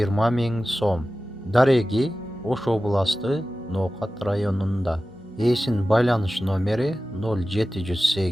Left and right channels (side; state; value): both; normal; correlation 0.95